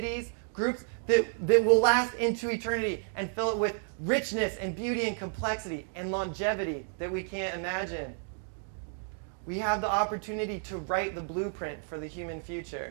groups that will last into eternity and fill it with richness and beauty and complexity and longevity that we can't imagine. We have the opportunity to write the blueprint for the human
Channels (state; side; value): silent; left; 57 dB below the other